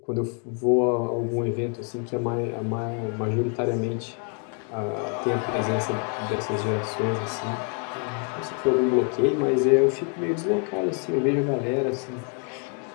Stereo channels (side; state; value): right; quieter; 39.0 dB